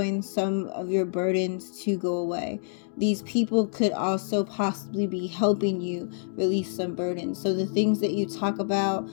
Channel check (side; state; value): right; silent; digital silence